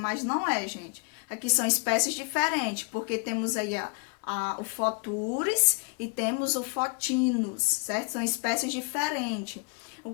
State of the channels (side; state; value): right; quieter; 34.9 dB